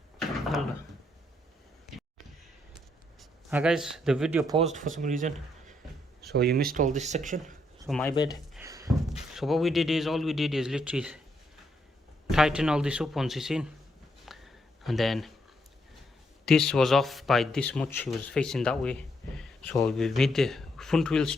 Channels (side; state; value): both; normal; correlation 0.76